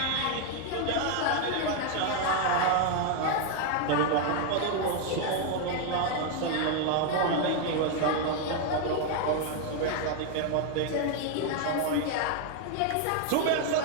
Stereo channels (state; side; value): different; both; correlation 0.01